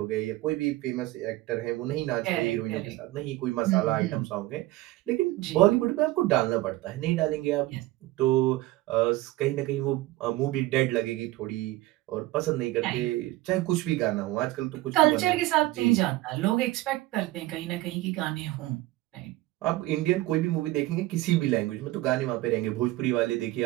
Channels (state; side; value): quieter; left; 17.8 dB